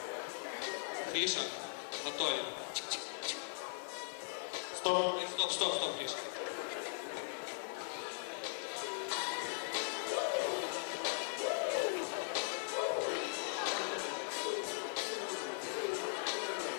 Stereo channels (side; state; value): right; silent; digital silence